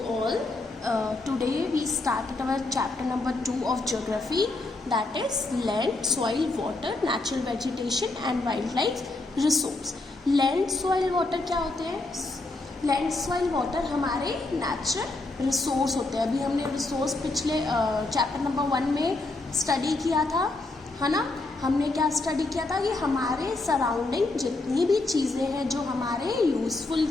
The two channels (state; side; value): quieter; right; 3.1 dB